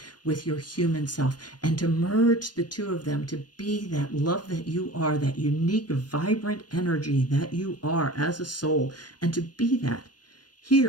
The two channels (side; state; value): right; late; 0.69 ms